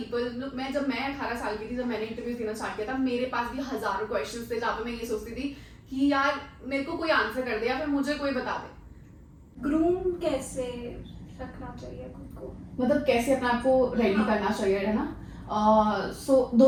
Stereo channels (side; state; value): both; identical; correlation 1.00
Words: जब मैं 18 साल की थी, जब मैंने इंटरव्यू देना स्टार्ट किया था, मेरे पास भी हजारों क्वेश्चंस थे जहाँ पे मैं ये सोचती थी कि यार मेरे को कोई आंसर कर दे या फिर मुझे कोई बता दे। ग्रूम कैसे रखना चाहिए खुद को, मतलब कैसे अपने आप को रेडी करना चाहिए, है ना। सो